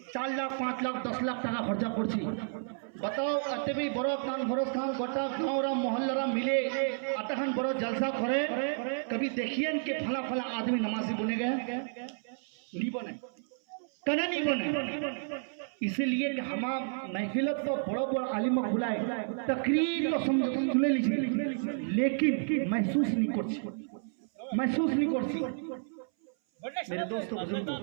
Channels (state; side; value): silent; left; 57 dB below the other